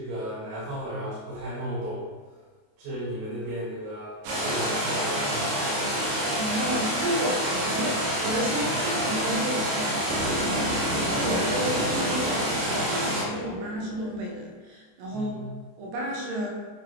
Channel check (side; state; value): left; late; 28 ms